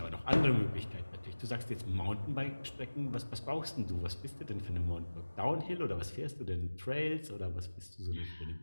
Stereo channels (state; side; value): inverted; both; correlation -1.00